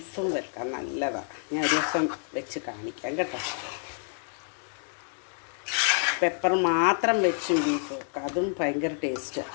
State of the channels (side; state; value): right; silent; 59 dB below the other